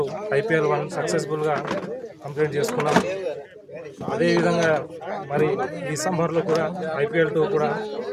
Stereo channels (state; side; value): identical; both; correlation 1.00